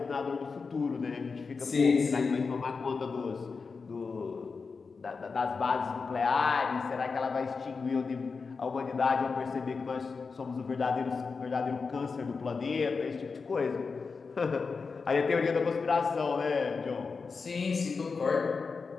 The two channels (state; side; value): quieter; right; 4.8 dB